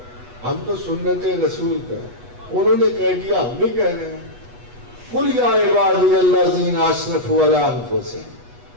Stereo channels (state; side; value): late; left; 8.2 ms